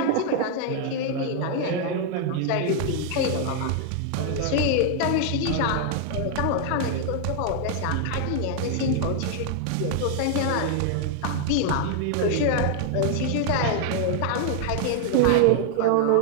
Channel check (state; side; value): different; both; correlation 0.00